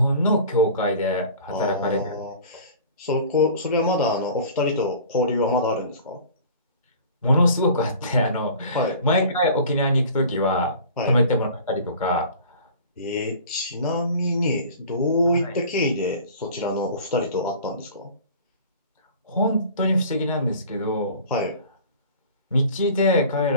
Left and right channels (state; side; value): inverted; both; correlation -0.44